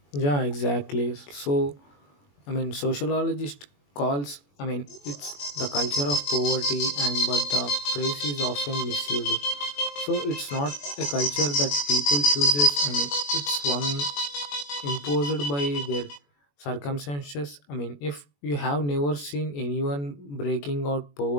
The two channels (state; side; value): late; right; 21 ms